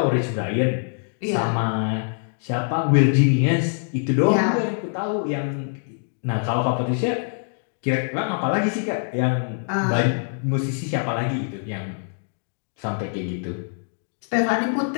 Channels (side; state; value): right; silent; digital silence